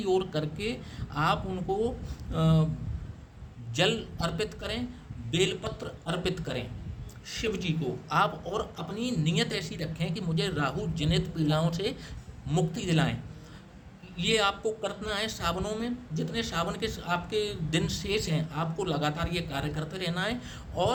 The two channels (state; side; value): identical; both; correlation 1.00